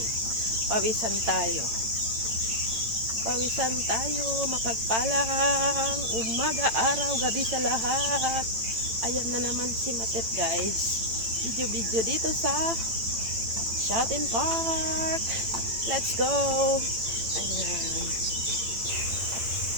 Pawisan tayo. Pawisan tayo. Mapagpalang umaga, araw, gabi sa lahat. Ayan na naman si Matet guys. Video dito sa Shopping Park. Let's go. Ayan.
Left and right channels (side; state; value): left; late; 8.9 ms